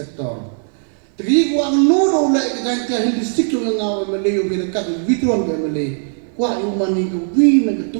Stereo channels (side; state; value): left; silent; 58 dB below the other